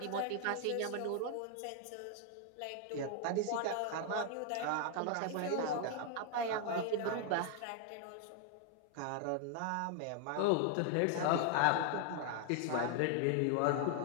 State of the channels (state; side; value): different; both; correlation 0.00